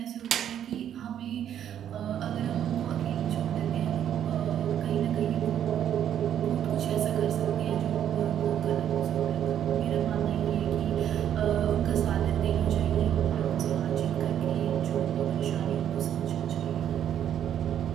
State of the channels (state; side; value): quieter; left; 10.0 dB